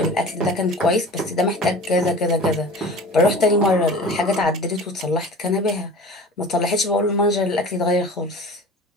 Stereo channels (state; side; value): normal; both; correlation 0.39